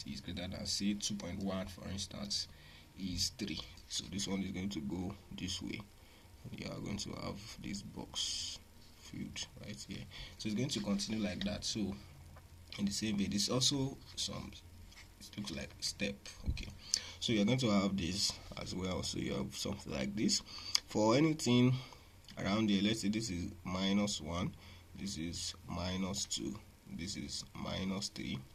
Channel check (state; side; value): identical; both; correlation 1.00